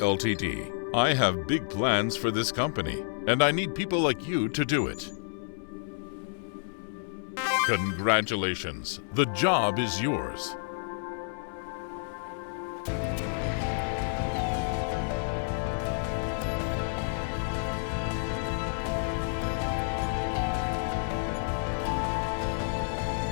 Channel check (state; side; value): silent; right; 58 dB below the other